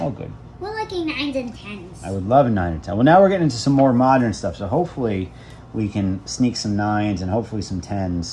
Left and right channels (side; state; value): both; identical; correlation 1.00